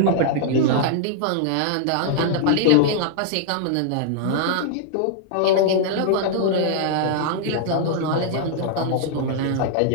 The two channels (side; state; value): both; different; correlation -0.01